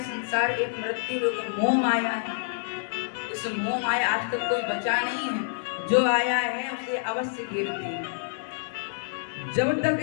संसार एक मृत्यु लोक है, मोह माया है। इस मोह माया आज तक कोई बचा नहीं है, जो आया है उसे अवश्य घेरती है। जब तक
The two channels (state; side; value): silent; right; digital silence